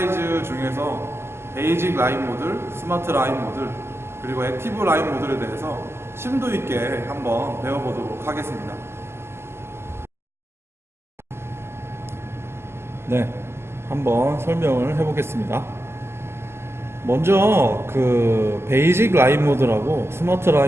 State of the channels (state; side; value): late; left; 0.12 ms